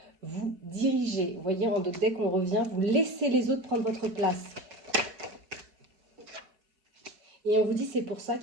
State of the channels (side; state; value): left; late; 5.2 ms